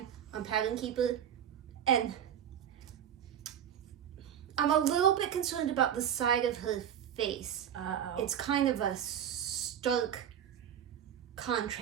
on Pattern Keeper, and I'm a little bit concerned about the side of her face. Uh-oh. It's kind of a stark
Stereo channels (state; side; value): quieter; left; 9.4 dB